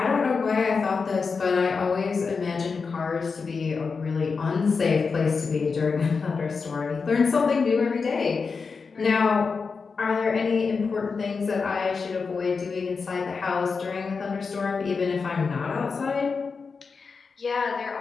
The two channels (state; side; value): quieter; right; 5.0 dB